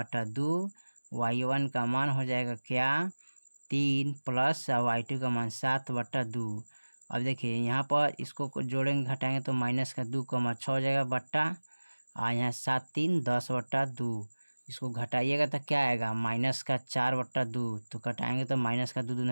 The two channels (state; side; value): inverted; both; correlation -1.00